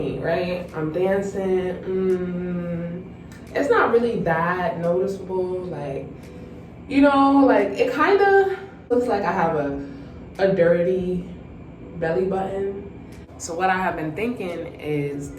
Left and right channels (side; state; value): both; identical; correlation 1.00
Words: right? I'm dancing. It's not really that noticeable. Like, you know, like it kind of looks like I have a dirty belly button. So what I have been thinking is